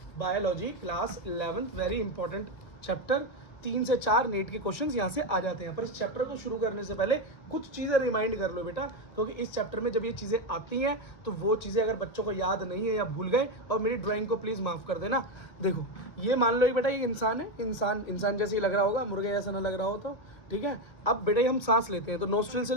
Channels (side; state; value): right; late; 1.5 ms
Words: biology, class 11th। Very important chapter. 3 से 4 नीट के क्वेश्चंस यहाँ से आ जाते हैं। पर इस चैप्टर को शुरू करने से पहले कुछ चीज़ें रिमाइंड कर लो बेटा, क्योंकि इस चैप्टर में जब ये चीज़ें आती हैं तो वो चीज़ें अगर बच्चों को याद नहीं है या भूल गए, और मेरी ड्राइंग को प्लीज़ माफ़ कर देना। देखो ये मान लो बेटा, ये इंसान है, इंसान जैसे ही लग रहा होगा, मुर्गे जैसा ना लग रहा हो तो ठीक है। अब बेटा हम सांस लेते हैं तो नोस्ट्रिल से